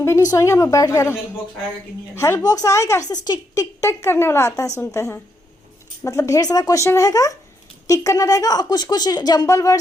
भी नहीं सोएंगे, हम बैठ गए। हेल्प बॉक्स आएगा कि नहीं आएगा? हेल्प बॉक्स आएगा, ऐसे टिक टिक टिक करने वाला आता है, सुनते हैं। मतलब ढेर सारा क्वेश्चन रहेगा, टिक करना रहेगा, और कुछ कुछ जंबल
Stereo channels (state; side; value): normal; both; correlation 0.78